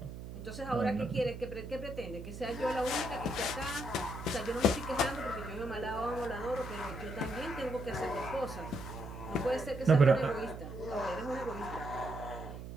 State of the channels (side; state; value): right; noise; hum, 10 dB below the sound